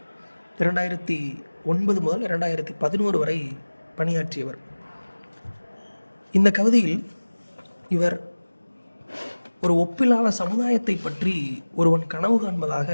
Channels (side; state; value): both; inverted; correlation -1.00